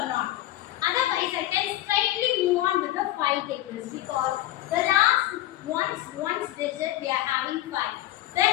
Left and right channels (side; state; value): right; quieter; 14.9 dB